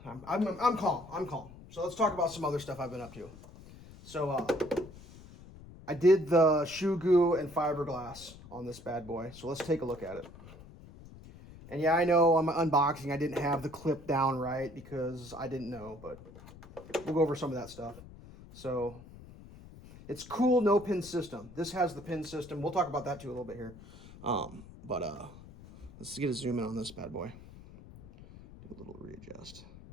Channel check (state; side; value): noise; left; rumble, 18 dB below the sound